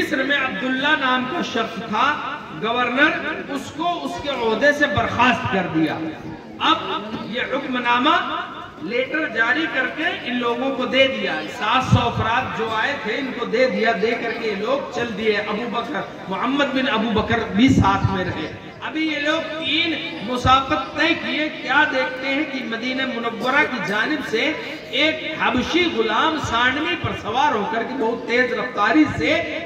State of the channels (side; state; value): both; identical; correlation 1.00